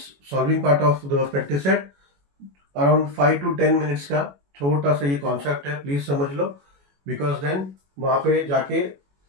solving part of the practice set, around 5 to 10 minutes का छोटा सा ये concept है, please समझ लो, because then वहां पे जाके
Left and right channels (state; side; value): late; left; 21 ms